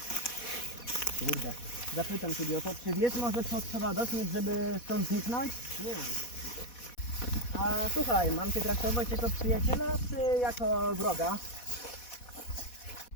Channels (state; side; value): late; right; 4.1 ms